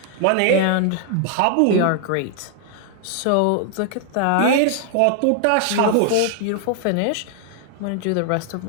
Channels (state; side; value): different; both; correlation 0.00